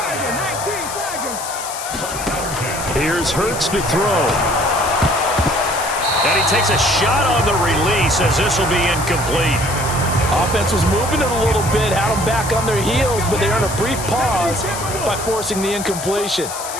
Here's Hurts to throw. And he takes a shot on the release as this will be incomplete. Offense was moving it a little bit, had them back on their heels, but they earned a brief pause by forcing the incompletion.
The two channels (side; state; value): left; noise; hiss, 8 dB below the sound